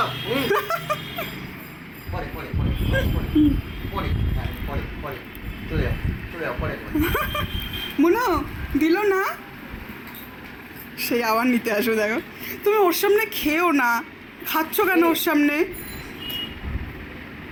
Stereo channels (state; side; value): identical; both; correlation 1.00